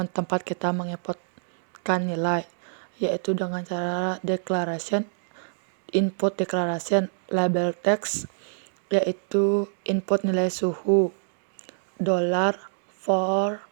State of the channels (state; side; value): silent; left; digital silence